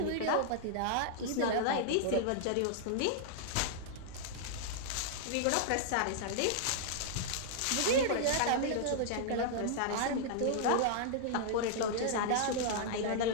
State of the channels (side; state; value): both; different; correlation -0.01